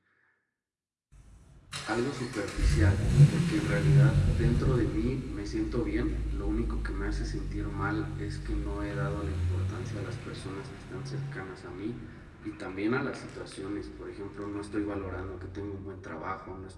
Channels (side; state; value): both; identical; correlation 1.00